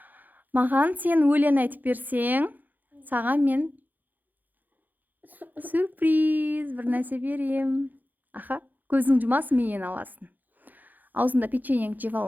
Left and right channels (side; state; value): left; late; 0.084 ms